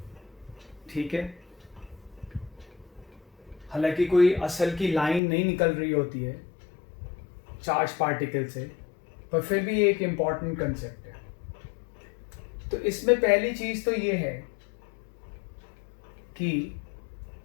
ठीक है। हालांकि कोई असल की लाइन नहीं निकल रही होती है चार्ज पार्टिकल से, पर फिर भी एक इम्पॉर्टेंट कंसेप्ट है। तो इसमें पहली चीज तो ये है कि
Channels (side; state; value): right; drops out; at 5.2 s